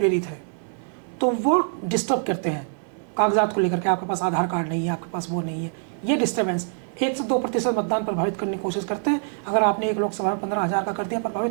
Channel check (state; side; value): silent; left; 58 dB below the other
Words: है तो वो डिस्टर्ब करते हैं कागजात को लेकर के, आपके पास आधार कार्ड नहीं है, आपके पास वो नहीं है, ये डिस्टर्बेंस 1 से 2% मतदान प्रभावित करने की कोशिश करते हैं। अगर आपने एक लोकसभा में 15,000 का कर दिया